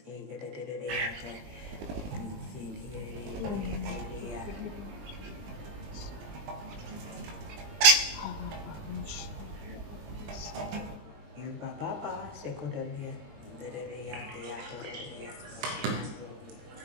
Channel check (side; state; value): left; late; 20 ms